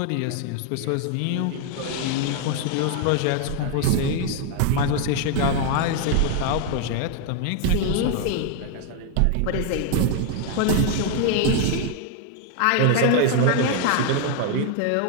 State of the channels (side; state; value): both; different; correlation 0.00